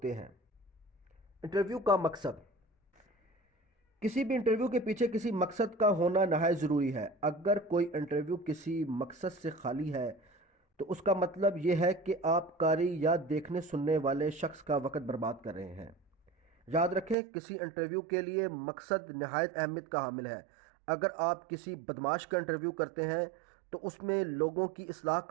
ہیں۔ انٹرویو کا مقصد۔ کسی بھی انٹرویو کے پیچھے کسی مقصد کا ہونا نہایت ضروری ہے۔ اگر کوئی انٹرویو کسی مقصد سے خالی ہے تو اس کا مطلب یہ ہے کہ آپ قاری یا دیکھنے سننے والے شخص کا وقت برباد کر رہے ہیں۔ یاد رکھیں، کسی انٹرویو کے لیے مقصد نہایت اہمیت کا حامل ہے۔ اگر آپ کسی بدماش کا انٹرویو کرتے ہیں تو اس میں لوگوں کی اصلاح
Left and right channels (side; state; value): left; drops out; at 17.2 s